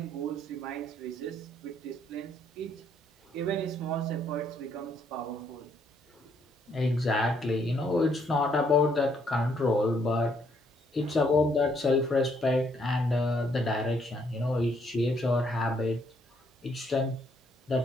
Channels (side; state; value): both; normal; correlation 0.70